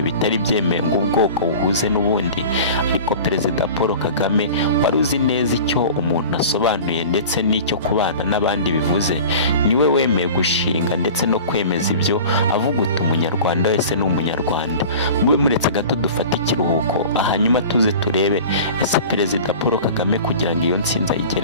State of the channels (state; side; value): inverted; both; correlation -0.38